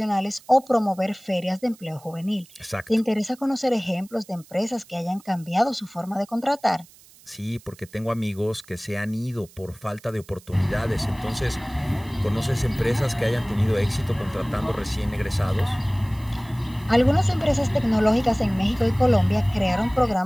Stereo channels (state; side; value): noise; right; hiss, 25 dB below the sound